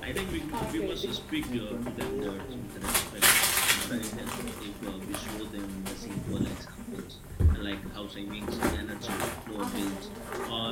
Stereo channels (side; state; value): both; identical; correlation 1.00